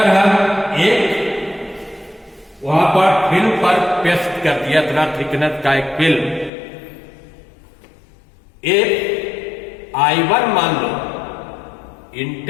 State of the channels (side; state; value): right; drops out; at 6.5 s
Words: हम एक वहां पर फिल्म पर पेस्ट कर दिया इतना थिकनेस का एक फिल्म, एक I1 मान लो